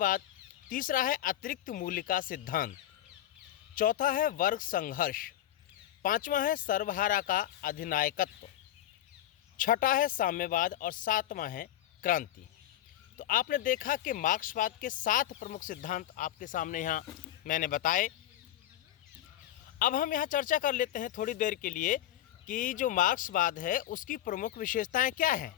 तीसरा है अतिरिक्त मूल्य का सिद्धांत, चौथा है वर्ग संघर्ष, पांचवा है सर्वहारा का अधिनायकत्व, छठा है साम्यवाद और सातवां है क्रांति। तो आपने देखा कि मार्क्सवाद के 7 प्रमुख सिद्धांत आपके सामने यहाँ मैंने बताए। अब हम यहाँ चर्चा कर लेते हैं थोड़ी देर के लिए कि जो मार्क्सवाद है उसकी प्रमुख विशेषताएं क्या हैं।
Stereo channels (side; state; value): right; quieter; 12.6 dB